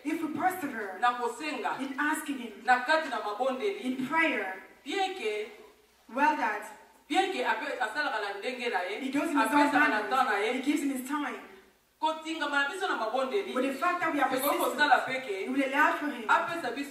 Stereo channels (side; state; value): both; identical; correlation 1.00